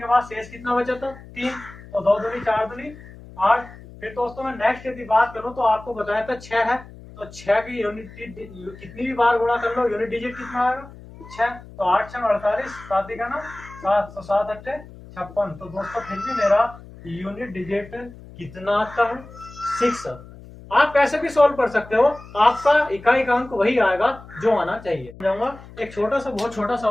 बाद शेष कितना बचा था 3, तो 2 दूनी 4 दूनी 8। फिर दोस्तों मैं नेक्स्ट यदि बात करूं तो आपको बताया था 6 है, तो 6 की यूनिट कितनी भी बार गुणा कर लो यूनिट डिजिट कितना आएगा 6, तो 8 6 48, 7 का ना 7, तो 7 अट्ठे 56। तो दोस्तों फिर भी मेरा यूनिट डिजिट कितना आता है 6। आप कैसे भी सॉल्व कर सकते हो, आपका इकाई का अंक वही आएगा जो आना चाहिए। जाऊंगा एक छोटा सा बहुत छोटा सा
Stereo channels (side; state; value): left; noise; hum, 18 dB below the sound